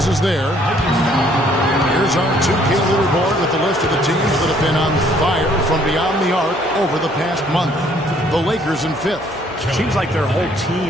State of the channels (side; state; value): both; normal; correlation 0.62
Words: is there. Here's our 2K leaderboard with the list of the teams that have been on fire from beyond the arc over the past month. The Lakers in 5th. Seems like their whole